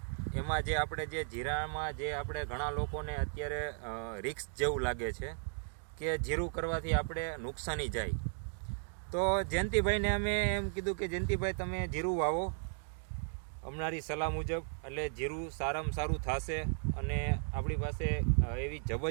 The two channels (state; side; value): silent; left; digital silence